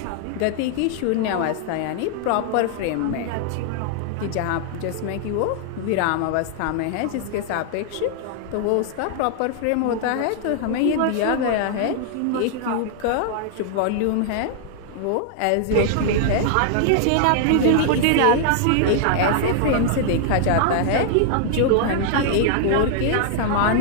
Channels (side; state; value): both; different; correlation -0.01